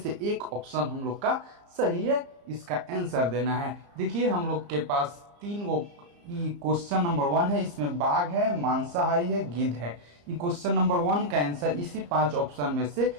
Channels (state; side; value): late; left; 34 ms